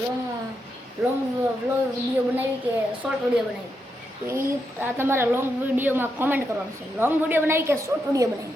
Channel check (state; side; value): normal; both; correlation 0.83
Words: વિડીયો બનાવી કે શોર્ટ વિડીયો બનાવી. તો એ આ તમારે લોંગ વિડીયોમાં કોમેન્ટ કરવાનું છે. લોંગ વિડીયો બનાવી કે શોર્ટ વિડીયો બનાવી